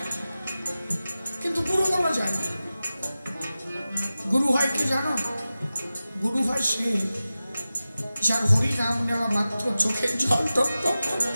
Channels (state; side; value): inverted; both; correlation -0.95